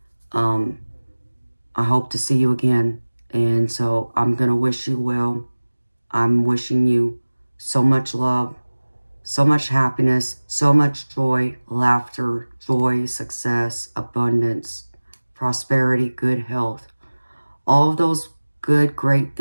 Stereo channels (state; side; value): inverted; both; correlation -1.00